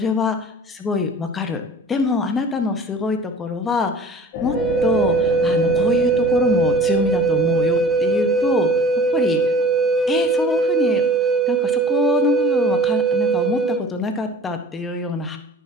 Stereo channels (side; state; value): both; normal; correlation 0.44